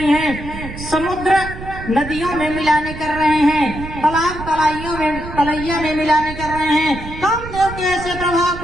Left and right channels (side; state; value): right; noise; rumble, 11 dB below the sound